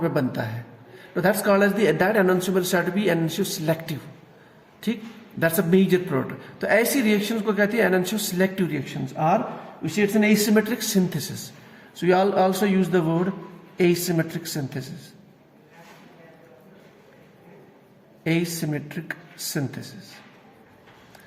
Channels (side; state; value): both; identical; correlation 1.00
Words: में बनता है, तो that's called as that enantiomer is said to be enantioselective. ठीक, that's a major product. तो ऐसी reactions को कहते हैं enantioselective reactions, or we say it's an asymmetric synthesis. So you also use the word asymmetric synthesis. Asymmetric synthesis.